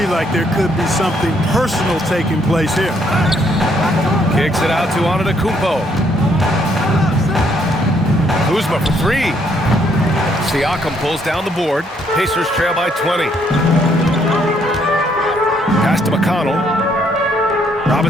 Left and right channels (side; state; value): both; normal; correlation 0.69